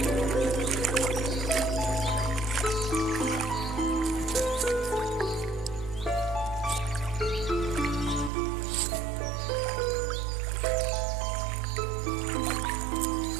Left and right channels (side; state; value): left; drops out; at 8.3 s